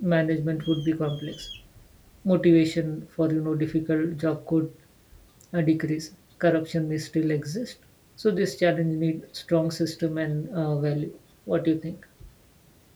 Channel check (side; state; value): both; identical; correlation 1.00